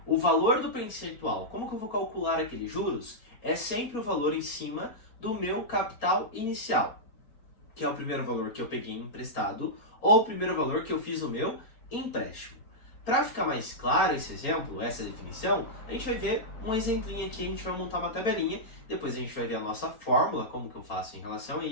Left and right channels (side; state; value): right; late; 4.3 ms